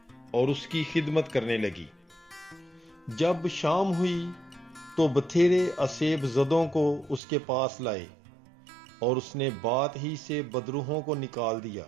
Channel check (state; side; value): drops out; left; at 7.2 s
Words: اور اس کی خدمت کرنے لگی۔ جب شام ہوئی تو بتھیرے اسیب زدوں کو اس کے پاس لائے، اور اس نے بات ہی سے بدروحوں کو نکال دیا،